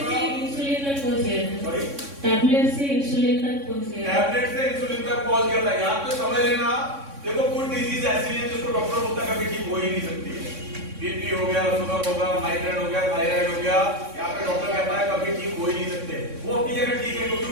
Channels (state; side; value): late; left; 3.6 ms